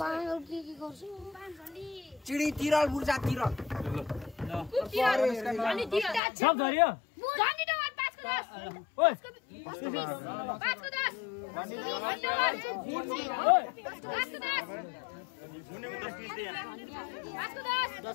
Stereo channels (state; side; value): drops out; right; at 6.2 s